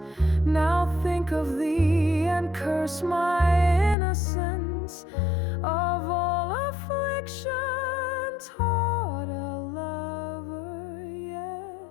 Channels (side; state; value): right; drops out; at 4.0 s